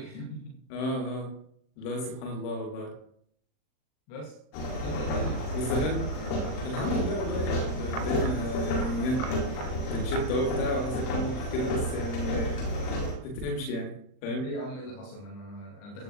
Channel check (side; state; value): right; late; 39 ms